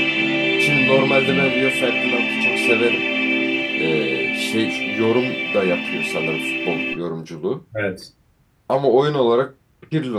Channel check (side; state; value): both; identical; correlation 1.00